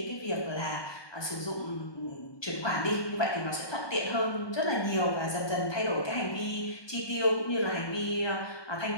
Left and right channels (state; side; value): late; right; 1.2 ms